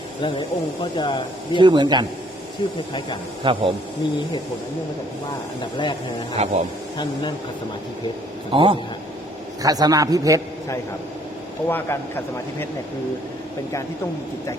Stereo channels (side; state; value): both; normal; correlation 0.62